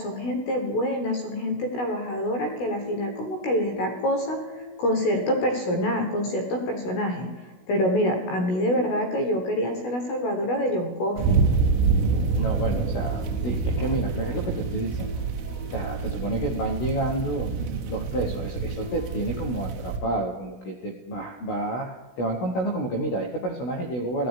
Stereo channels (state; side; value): late; right; 16 ms